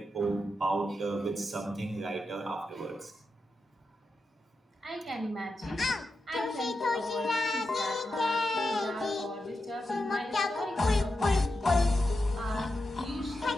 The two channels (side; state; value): both; normal; correlation 0.88